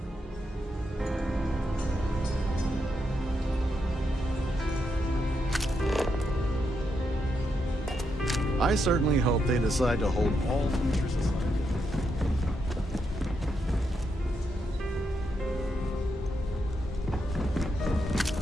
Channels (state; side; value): normal; both; correlation 0.82